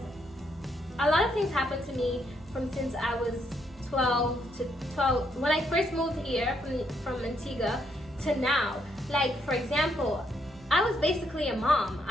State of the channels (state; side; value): normal; both; correlation 0.75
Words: a lot of things happened to me from since I was 12 when I first moved here from Antigua to now. Like, for example, I was basically a mom.